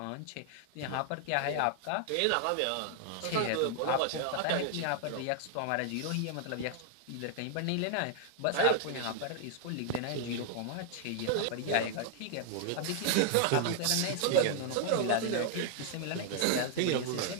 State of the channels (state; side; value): different; both; correlation 0.00